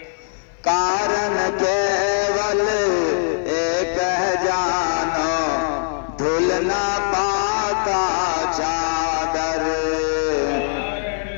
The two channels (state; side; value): silent; right; 58 dB below the other